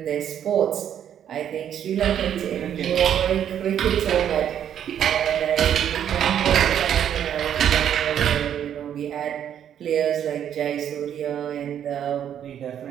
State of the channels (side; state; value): left; quieter; 9.6 dB